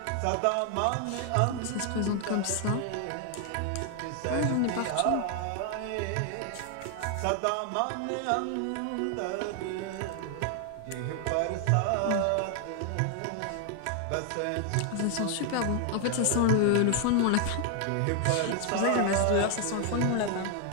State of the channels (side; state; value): both; different; correlation 0.00